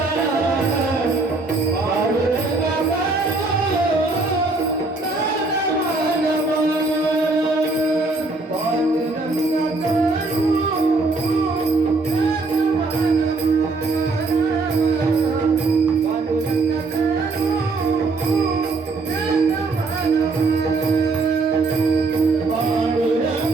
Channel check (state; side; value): quieter; left; 3.6 dB